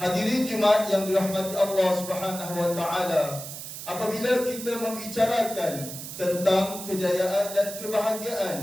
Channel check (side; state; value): right; noise; hiss, 10 dB below the sound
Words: Jumaat yang dirahmati Allah Subhanahu wa taala, apabila kita membicarakan tentang kejayaan dan kebahagiaan,